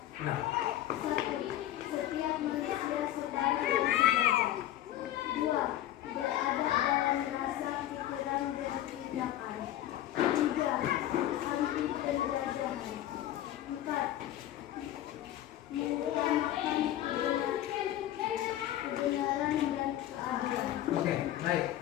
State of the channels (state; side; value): quieter; right; 13.1 dB